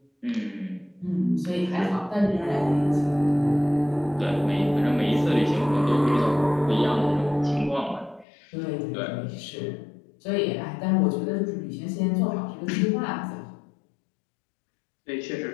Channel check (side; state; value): right; drops out; at 8.2 s